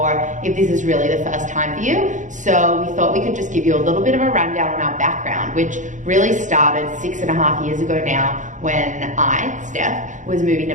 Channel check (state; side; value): late; left; 0.36 ms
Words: if this is really the first time for you. So we thought we could just give you a little bit of a rundown on our background, which really started 6.5 years ago now when I, Stef, was moving